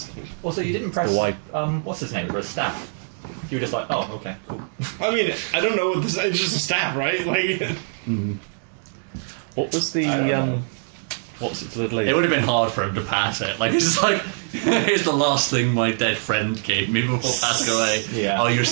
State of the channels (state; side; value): silent; left; 60 dB below the other